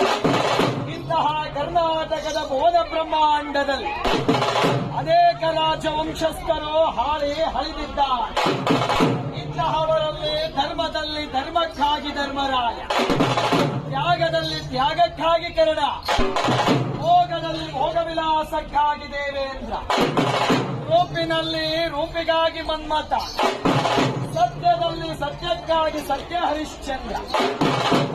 ಇಂತಹ ಕರ್ನಾಟಕದ ಭುವನ ಬ್ರಹ್ಮಾಂಡದಲ್ಲಿ ಅನೇಕ ರಾಜವಂಶಸ್ಥರು ಹಾಳಿ ಹಳಿದಿದ್ದಾರೆ. ಇಂತಹವರಲ್ಲಿ ಧರ್ಮದಲ್ಲಿ ಧರ್ಮಕ್ಕಾಗಿ ಧರ್ಮರಾಯ, ತ್ಯಾಗದಲ್ಲಿ ತ್ಯಾಗಕ್ಕಾಗಿ ಕರ್ಣ, ಭೋಗದಲ್ಲಿ ಭೋಗವಿಲಾಸಕ್ಕಾಗಿ ದೇವೇಂದ್ರ, ರೂಪಿನಲ್ಲಿ ರೂಪಿಗಾಗಿ ಮನ್ಮಥ, ಸತ್ಯದಲ್ಲಿ ಸತ್ಯಕ್ಕಾಗಿ ಸತ್ಯ ಹರಿಶ್ಚಂದ್ರ.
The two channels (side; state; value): both; identical; correlation 1.00